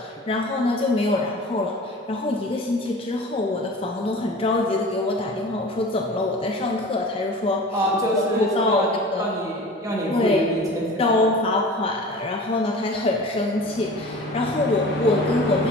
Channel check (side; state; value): both; normal; correlation 0.39